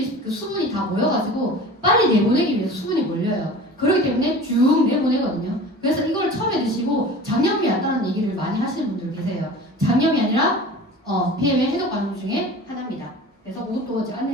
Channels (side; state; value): both; normal; correlation 0.39